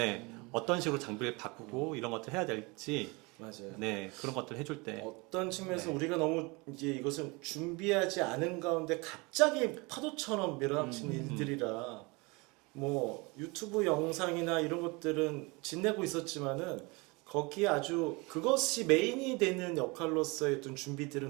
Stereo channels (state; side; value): quieter; left; 26.7 dB